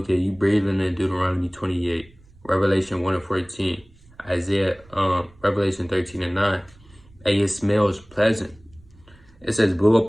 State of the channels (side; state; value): right; noise; rumble, 27 dB below the sound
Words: you breathing in Deuteronomy 28, Revelation 1 and 14, Isaiah, Revelation 13 and 9. And it smells pleasant. It says, blow